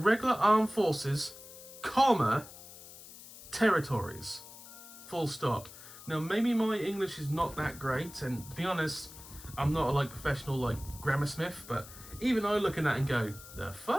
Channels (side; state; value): left; noise; hiss, 17 dB below the sound